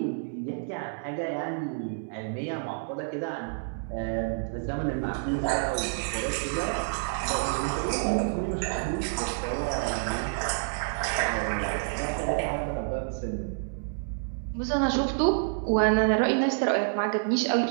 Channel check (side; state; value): left; silent; digital silence